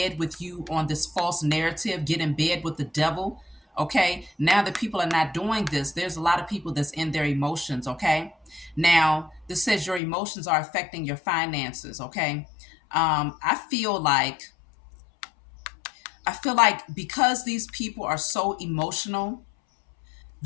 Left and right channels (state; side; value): drops out; right; at 10.0 s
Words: with you on this false narrative, get in bed with the devil. Okay, now that people are not doing this, there's a lot of people that's in their emotions. Okay, now this says your emotions are affecting your finances. Okay, I feel like because these people are so emotional,